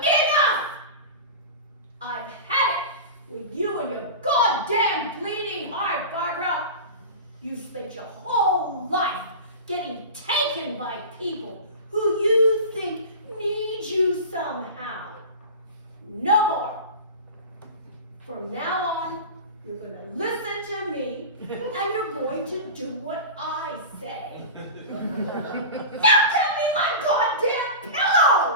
I've had it with you and your goddamn bleeding heart, Barbara. You spent your whole life getting taken by people who you think need you somehow. No more. From now on, you're going to listen to me, and you're going to do what I say. Now give me my goddamn pillow!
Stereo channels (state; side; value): inverted; both; correlation -0.30